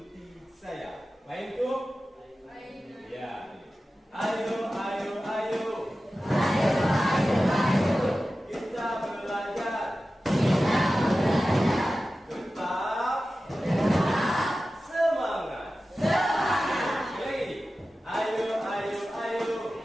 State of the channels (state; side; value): normal; both; correlation 0.95